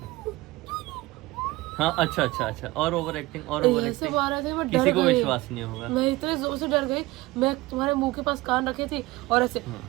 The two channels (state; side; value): quieter; left; 20.0 dB